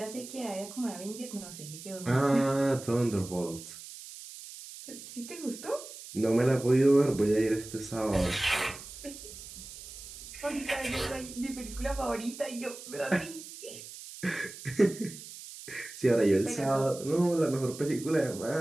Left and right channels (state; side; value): noise; right; hiss, 14 dB below the sound